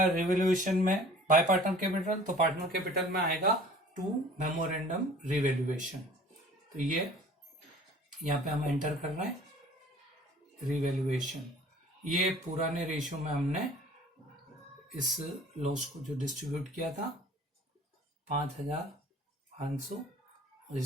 रिवैल्यूएशन में बाय पार्टनर कैपिटल, तो पार्टनर कैपिटल में आएगा 2 मेमोरेंडम रिवैल्यूएशन। तो ये यहाँ पे हम एंटर कर रहे हैं रिवैल्यूएशन। ये पुराने रेशियो में हमने इस लॉस को जो डिस्ट्रीब्यूट किया था 5,500 और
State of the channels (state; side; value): normal; both; correlation 0.48